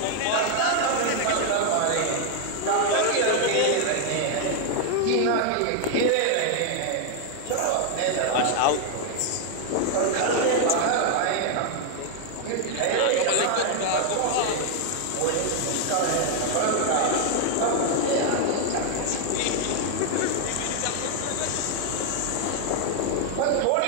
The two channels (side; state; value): both; different; correlation 0.00